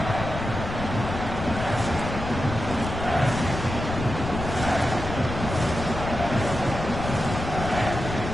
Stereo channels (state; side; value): noise; left; rumble, 6 dB below the sound